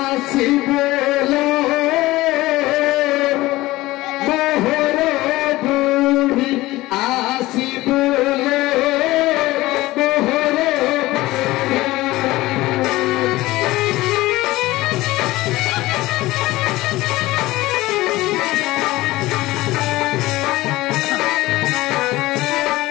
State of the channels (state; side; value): quieter; right; 18.4 dB